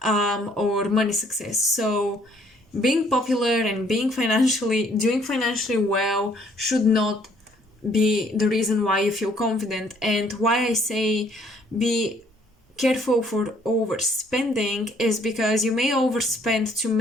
or money success. So, being popular and doing financially well should not be the reason why you feel confident. And why I say be careful for overspending is because you may overspend to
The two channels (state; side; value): normal; both; correlation 0.63